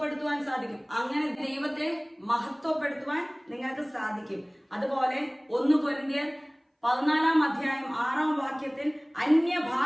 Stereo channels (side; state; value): both; identical; correlation 1.00